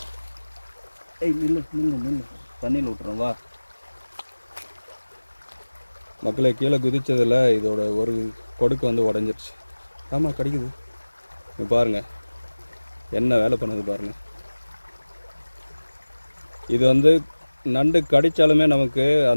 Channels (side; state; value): both; inverted; correlation -1.00